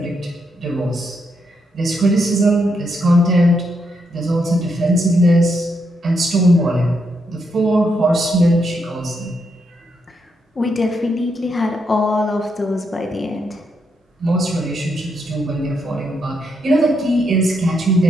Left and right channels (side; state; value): both; normal; correlation 0.80